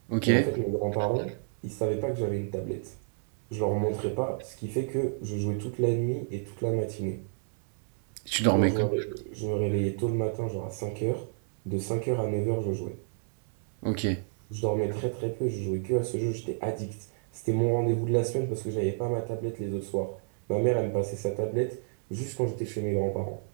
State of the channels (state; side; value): silent; left; 58 dB below the other